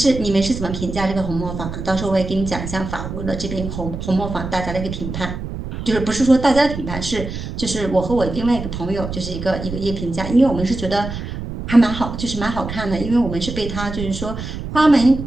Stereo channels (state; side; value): noise; right; rumble, 7 dB below the sound